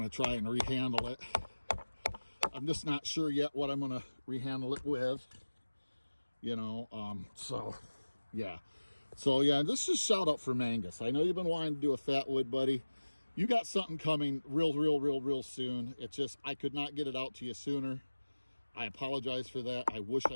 to try and rehandle it. I'm just not sure yet what I'm going to rehandle it with, so yeah, this is a shout out for Mangus. I know you've been wanting to do a fat wood, buddy. You got something coming real soon. It's just, I could not get it out to you sooner. I apologize for that. I wish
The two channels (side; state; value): both; inverted; correlation -1.00